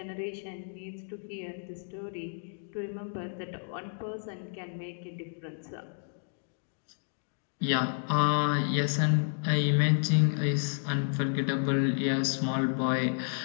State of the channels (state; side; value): silent; right; digital silence